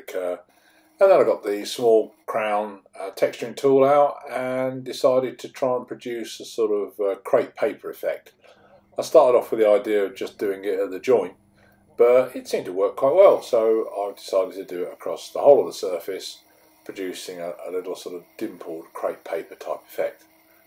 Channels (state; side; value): identical; both; correlation 1.00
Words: And then I got the small crown texturing tool out and decided to try and produce a sort of crepe paper effect. I started off with the idea of just doing it at the joint, but it seemed to work quite well, so I decided to do it across the whole of the surface, producing a little sort of dimpled crepe paper type effect,